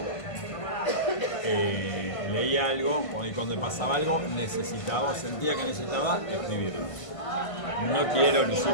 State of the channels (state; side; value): late; right; 1.5 ms